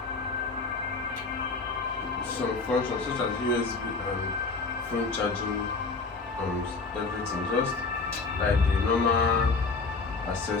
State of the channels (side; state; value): right; quieter; 4.1 dB